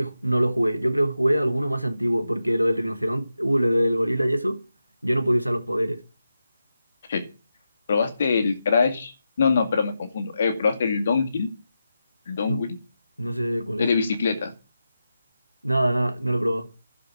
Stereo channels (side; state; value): both; inverted; correlation -0.90